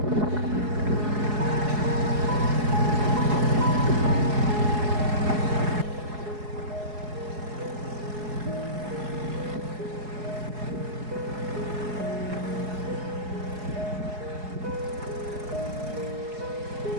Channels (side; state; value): left; late; 4.7 ms